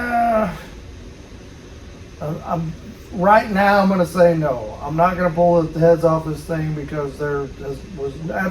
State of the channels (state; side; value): identical; both; correlation 1.00